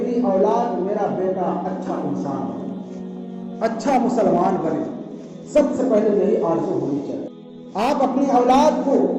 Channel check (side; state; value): both; identical; correlation 1.00